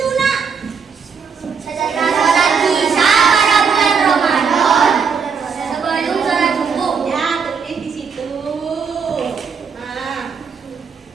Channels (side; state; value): left; quieter; 6.0 dB